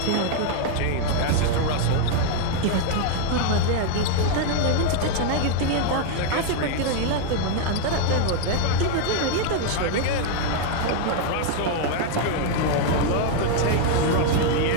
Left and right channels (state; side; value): different; both; correlation 0.00